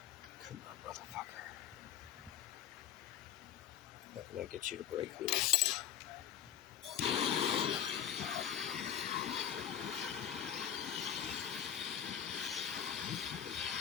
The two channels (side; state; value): right; quieter; 9.7 dB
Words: Can't get you to break loose.